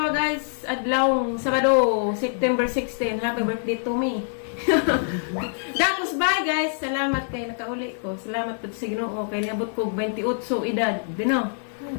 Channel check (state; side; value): silent; right; digital silence